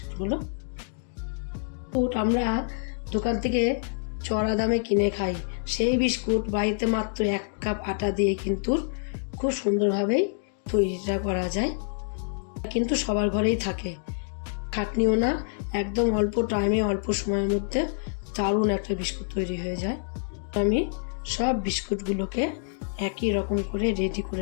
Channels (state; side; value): silent; right; digital silence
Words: আমরা দোকান থেকে চড়া দামে কিনে খাই, সেই বিস্কুট বাড়িতে মাত্র 1 কাপ আটা দিয়ে কিন্তু খুব সুন্দরভাবেই তৈরিটা করা যায়। কিন্তু সবার ঘরেই থাকে, খাটনিও না, একদম অল্প টাইমে অল্প সময়ের মধ্যে দারুণ একটা বিস্কুট তৈরি হয়ে যায়। আমি সব বিস্কুটগুলোকে একই রকম করে রেডি